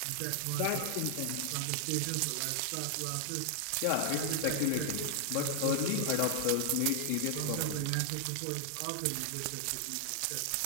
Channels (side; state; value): both; different; correlation 0.00